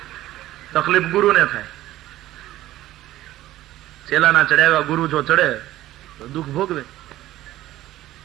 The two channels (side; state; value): left; quieter; 15.0 dB